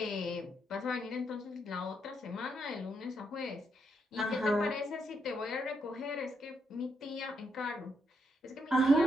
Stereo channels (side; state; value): both; normal; correlation 0.78